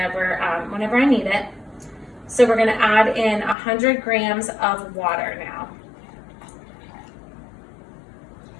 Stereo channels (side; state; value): right; drops out; at 3.6 s